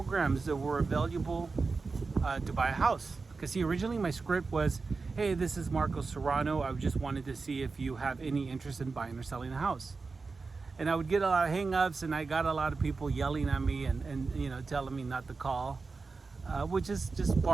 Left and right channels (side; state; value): left; quieter; 4.3 dB